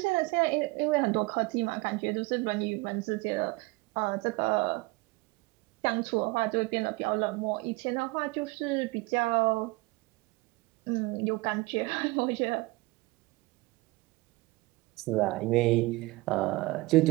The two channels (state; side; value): quieter; left; 22.1 dB